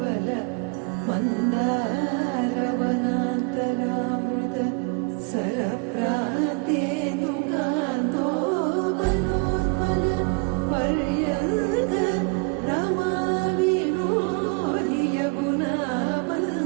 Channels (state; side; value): quieter; left; 31.7 dB